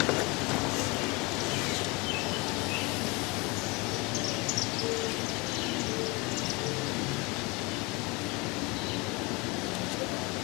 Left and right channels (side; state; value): right; quieter; 26.7 dB